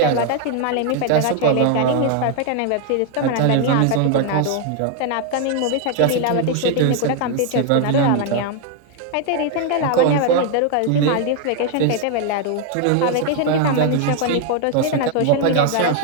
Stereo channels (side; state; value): both; different; correlation 0.00